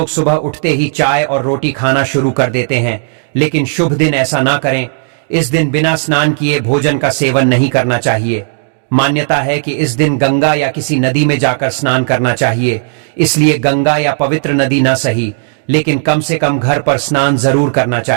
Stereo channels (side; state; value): left; silent; digital silence